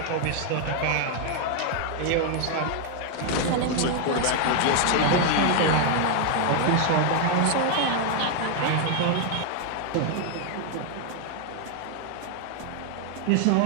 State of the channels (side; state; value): both; different; correlation 0.00